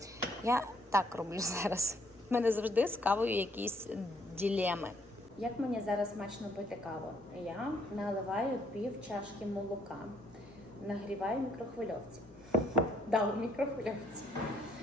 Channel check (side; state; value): both; normal; correlation 0.67